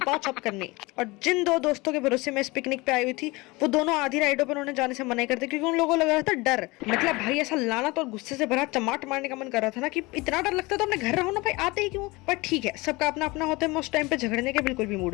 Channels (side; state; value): right; quieter; 23.3 dB